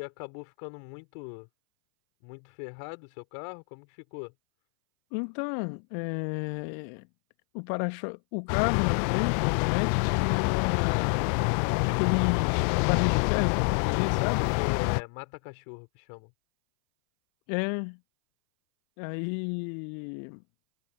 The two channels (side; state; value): right; silent; 59 dB below the other